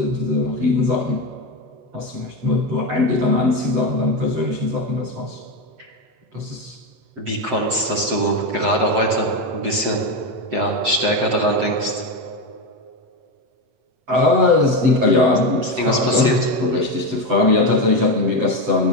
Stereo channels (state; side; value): late; left; 7.7 ms